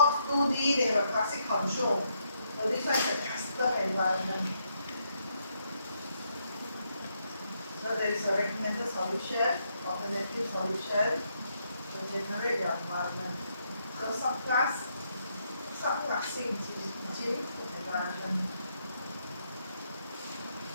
2D, they have a classic control. So this one is a custom environment. So there is a recommended solution, alternative solution to generate your environment. So subclassing gene environment.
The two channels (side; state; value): both; inverted; correlation -0.77